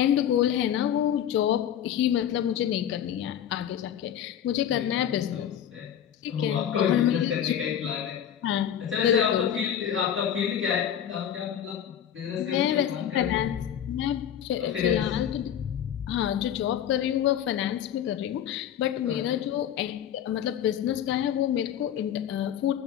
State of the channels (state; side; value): quieter; right; 9.8 dB